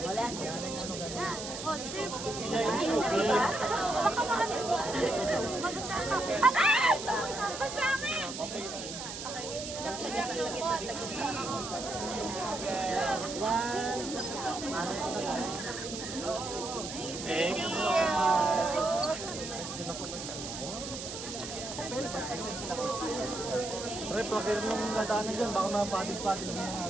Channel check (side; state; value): right; noise; hiss, 8 dB below the sound